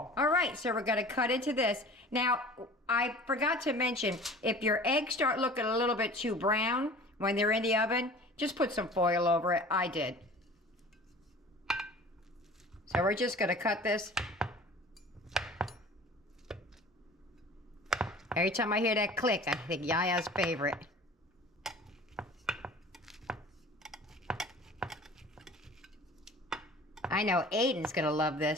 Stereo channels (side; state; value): both; normal; correlation 0.43